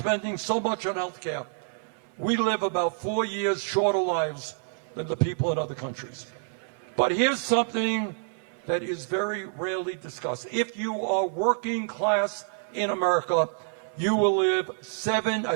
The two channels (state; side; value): silent; left; digital silence